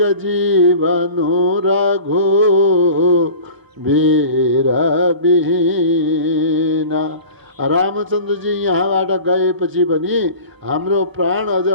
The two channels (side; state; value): left; late; 1.0 ms